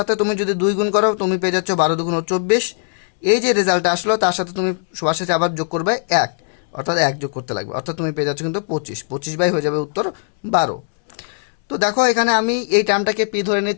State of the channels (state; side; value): silent; right; 66 dB below the other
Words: তুমি যদি 2 গুণ করো তুমি পেয়ে যাচ্ছ 12×2 = 24। এই যে রেজাল্টটা আসলো তার সাথে তুমি সবার সাথে আবার যোগ করবে 1, অর্থাৎ 1 যোগ করতে লাগবে, অর্থাৎ তুমি পেয়ে যাচ্ছ কিন্তু 25 হয়ে যাবে উত্তর 12। তো দেখো এখানে আমি এই টার্মটাকে p ধরে